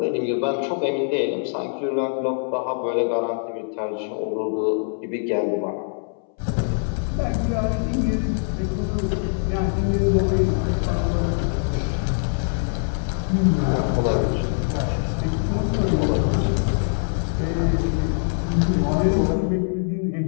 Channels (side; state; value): right; silent; 63 dB below the other